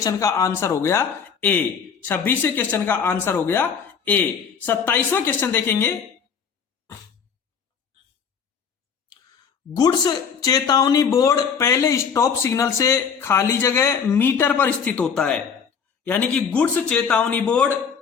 का आंसर हो गया ए। 26वें क्वेश्चन का आंसर हो गया ए। 27वां क्वेश्चन देखेंगे। गुड्स चेतावनी बोर्ड पहले स्टॉप सिग्नल से खाली जगह मीटर पर स्थित होता है। यानी कि गुड्स चेतावनी बोर्ड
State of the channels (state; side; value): quieter; right; 6.6 dB